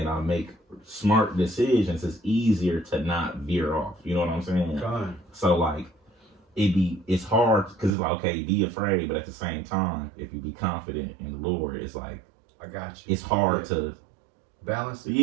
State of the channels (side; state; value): left; drops out; at 7.9 s